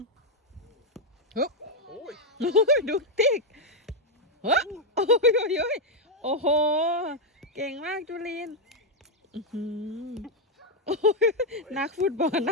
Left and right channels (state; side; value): normal; both; correlation 0.00